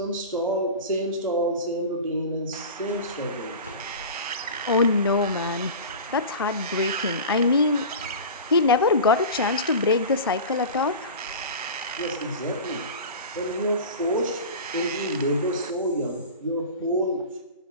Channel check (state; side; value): inverted; both; correlation -0.32